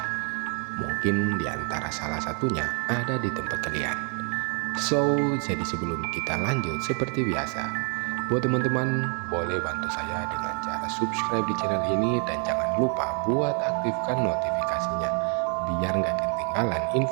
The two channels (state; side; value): quieter; left; 38.9 dB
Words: Mungkin di antara salah satunya ada di tempat kalian. Jadi sebelum kita lanjut, seperti biasa, buat teman-teman boleh bantu saya dengan cara subscribe di channel ini, dan jangan lupa buat aktifkan notifikasinya biar nggak ketinggalan